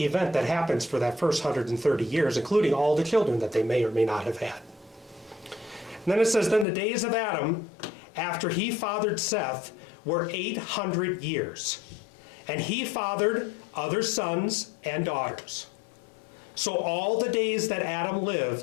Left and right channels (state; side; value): drops out; right; at 6.7 s